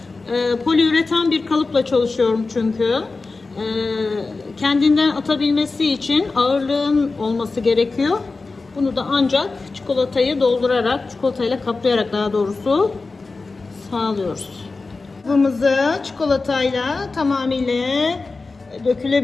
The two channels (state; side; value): quieter; right; 3.8 dB